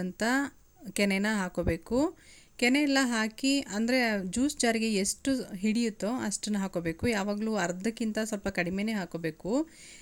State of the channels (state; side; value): identical; both; correlation 1.00